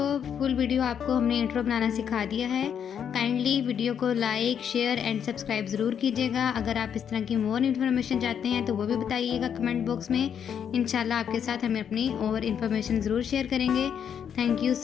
फुल वीडियो आपको हमने इंट्रो बनाना सिखा दिया है। काइंडली वीडियो को लाइक, शेयर एंड सब्सक्राइब ज़रूर कीजिएगा। अगर आप इस तरह की मोर इन्फॉर्मेशन चाहते हैं तो वो भी बताइएगा कमेंट बॉक्स में। इंशाल्लाह आपके साथ हमें अपनी और इन्फॉर्मेशन ज़रूर शेयर करेंगे। Thank you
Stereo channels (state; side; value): quieter; right; 8.2 dB